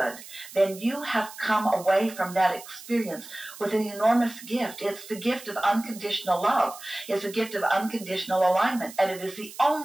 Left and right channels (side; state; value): right; noise; hiss, 16 dB below the sound